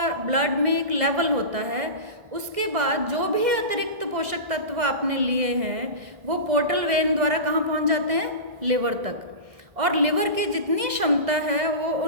ब्लड में एक लेवल होता है। उसके बाद जो भी अतिरिक्त पोषक तत्व आपने लिए हैं वो पोर्टल वेन द्वारा कहाँ पहुँच जाते हैं, लिवर तक। और लिवर की जितनी क्षमता है वो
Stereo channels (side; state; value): left; late; 1.7 ms